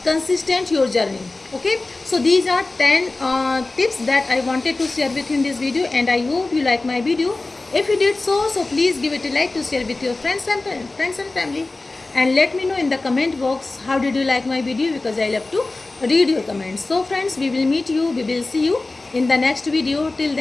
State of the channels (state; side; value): quieter; right; 3.2 dB